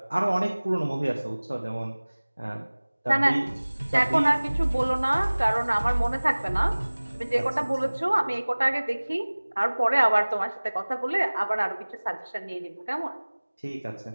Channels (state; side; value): inverted; both; correlation -1.00